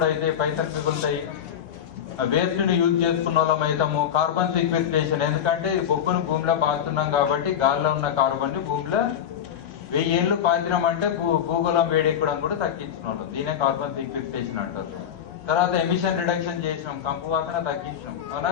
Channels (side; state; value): right; quieter; 9.1 dB